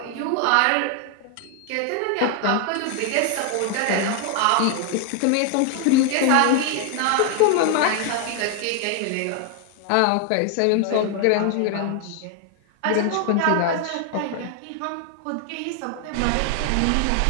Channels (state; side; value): different; both; correlation 0.00